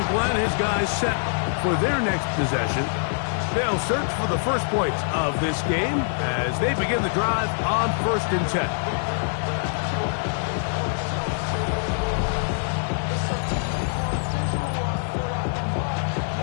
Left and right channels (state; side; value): silent; right; 62 dB below the other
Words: Glenn, his guys set for their next possession. They'll search for the first points of this game as they begin the drive on 1st and 10.